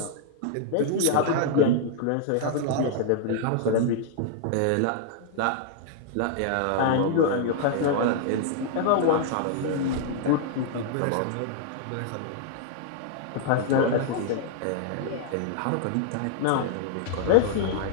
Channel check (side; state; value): both; different; correlation -0.01